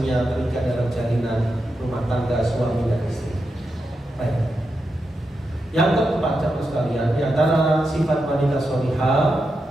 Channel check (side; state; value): both; normal; correlation 0.87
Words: terikat dalam jalinan rumah tangga suami dan istri. Baik. Yang keempat, jamaah sekalian, di antara sifat wanita solihah,